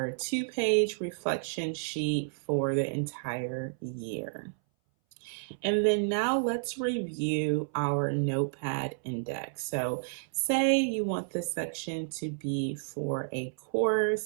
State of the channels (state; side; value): silent; left; 57 dB below the other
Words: 2-page reflection sheet for the entire year. And then now let's review our notepad index. So say you want this section to be for a